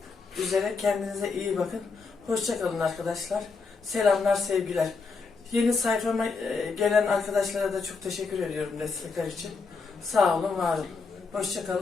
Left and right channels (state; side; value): quieter; right; 4.6 dB